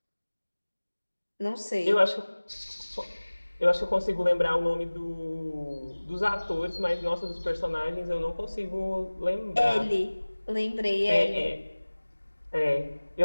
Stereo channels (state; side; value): inverted; both; correlation -1.00